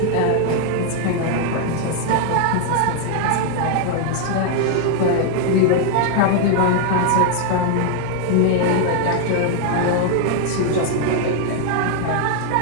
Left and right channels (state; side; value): different; both; correlation 0.00